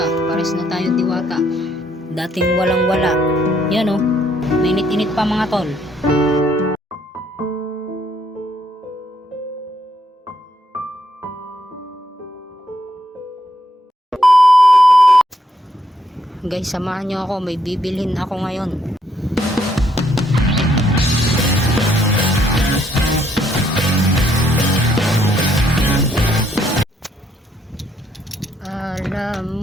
pares na tayo diwata. Dating walang wala. Yan oh, mainit-init pa mga tol. Guys, samahan nyo ako, may bibilhin ako ngayon.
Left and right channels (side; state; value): both; normal; correlation 0.72